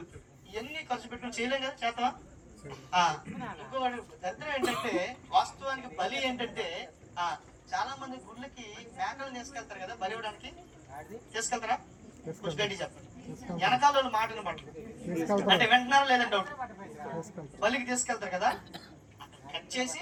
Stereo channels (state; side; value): identical; both; correlation 1.00